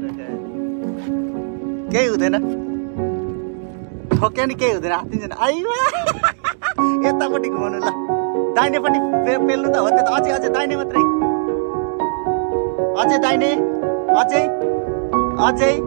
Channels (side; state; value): left; silent; digital silence